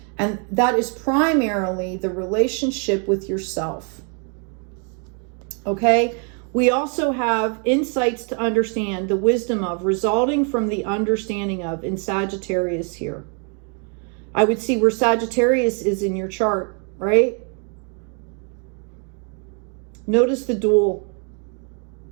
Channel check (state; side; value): quieter; left; 39.2 dB